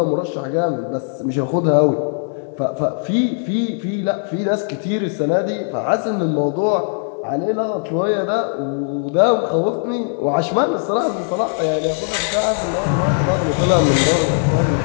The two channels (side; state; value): right; silent; 66 dB below the other